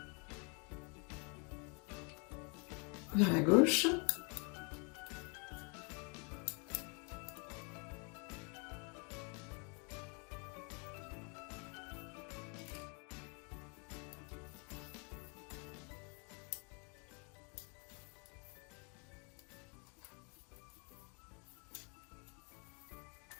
vers la gauche.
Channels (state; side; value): quieter; right; 34.9 dB